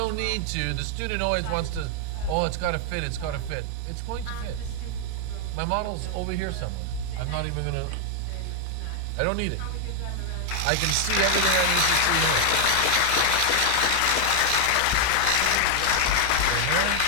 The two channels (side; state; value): both; different; correlation 0.00